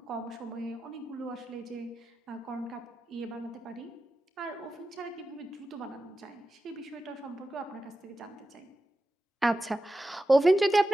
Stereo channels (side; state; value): both; normal; correlation 0.92